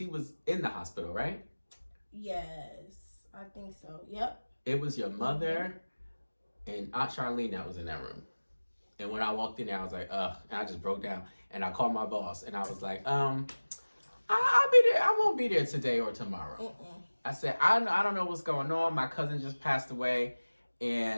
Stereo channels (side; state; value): both; inverted; correlation -1.00